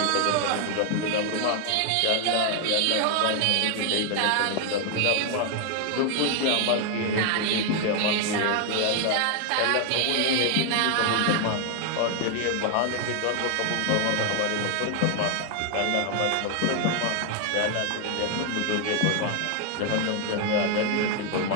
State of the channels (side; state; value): both; different; correlation 0.00